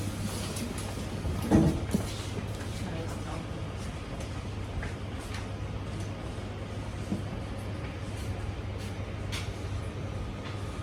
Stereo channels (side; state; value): both; identical; correlation 1.00